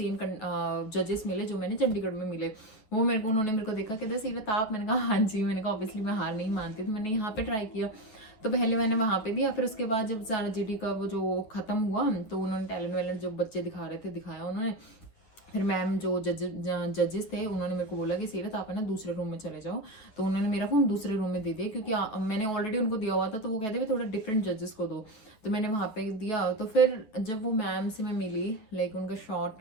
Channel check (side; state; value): right; late; 9.4 ms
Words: जजेस मिले जो मैंने चंडीगढ़ में मिले। वो उन्होंने मेरे को देखा, कहते सीरत आप, मैंने कहा हाँ जी। मैंने कहा ऑब्वियसली मैं हार नहीं मानती, तो मैंने यहाँ पे ट्राई किया। तो पहले मैंने वहाँ पे दिया, फिर उसके बाद जब सारा GD का वो जो खत्म हुआ, तो उन्होंने टैलेंट वैलेंट जो बच्चे दिखा रहे थे दिखाया उन्होंने। फिर मैम जो जजेस थे उन्होंने मेरे को बोला कि सीरत आप है ना दूसरे रूम में चले जाओ। तो उन्होंने मेरा फ़ोन दूसरे रूम में दे दिया, क्योंकि मैंने ऑलरेडी उनको दिया हुआ था, तो वो कहते थे थोड़ा डिफरेंट जजेस को दो, तो मैंने वहाँ पे दिया। तो फिर जब वो मैम से मैं मिली, लाइक उनका